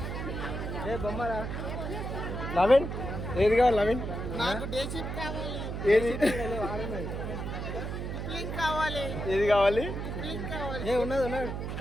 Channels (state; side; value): noise; right; hum, 4 dB below the sound